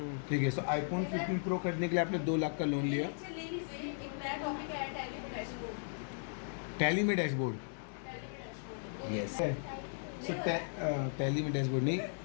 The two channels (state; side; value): silent; right; digital silence